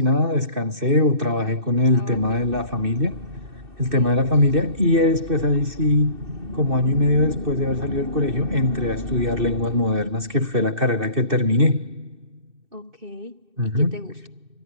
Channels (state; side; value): late; left; 2.6 ms